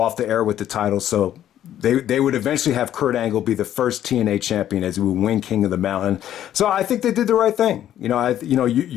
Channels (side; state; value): right; quieter; 11.4 dB